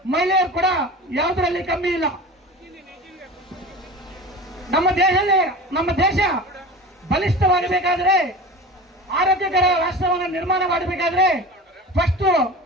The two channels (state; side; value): normal; both; correlation 0.34